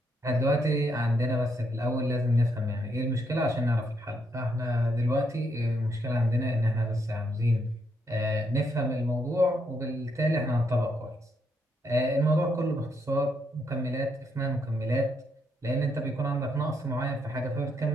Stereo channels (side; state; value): both; normal; correlation 0.76